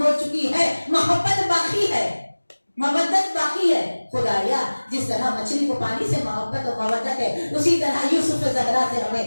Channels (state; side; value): inverted; both; correlation -1.00